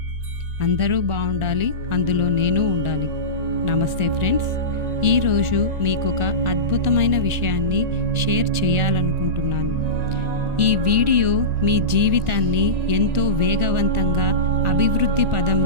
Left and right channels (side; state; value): left; late; 1.4 ms